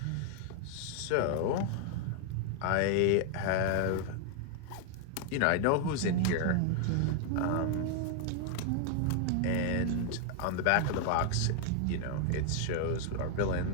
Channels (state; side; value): different; both; correlation 0.00